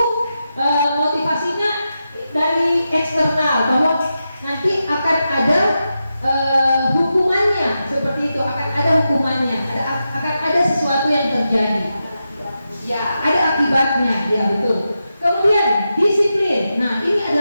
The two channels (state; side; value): inverted; both; correlation -0.89